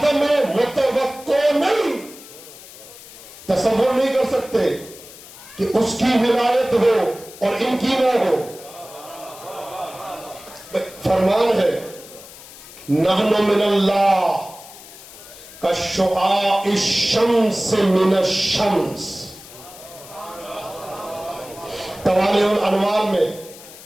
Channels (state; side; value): noise; left; hiss, 18 dB below the sound